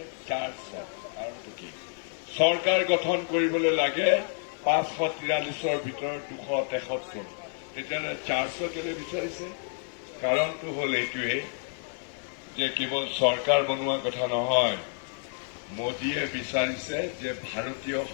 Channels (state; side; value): silent; right; 56 dB below the other